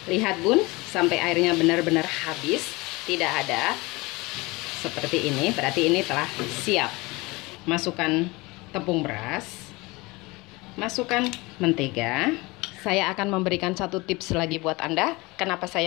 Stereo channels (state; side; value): quieter; right; 23.5 dB